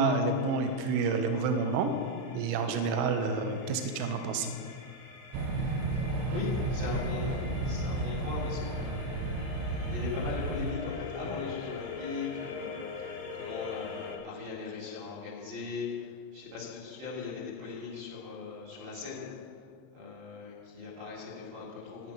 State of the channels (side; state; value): left; late; 31 ms